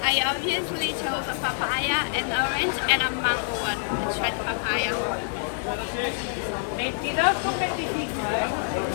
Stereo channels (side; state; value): right; silent; 61 dB below the other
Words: I obviously chose a papaya, an orange, and a mango one. Let's try the papaya.